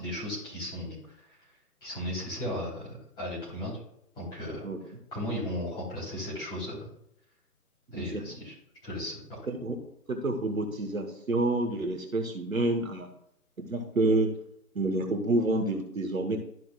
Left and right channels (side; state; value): both; normal; correlation 0.35